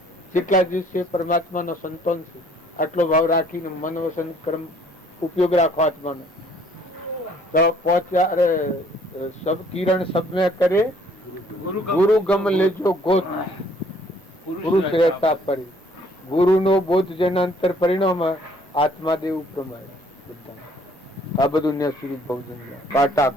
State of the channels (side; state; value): both; normal; correlation 0.60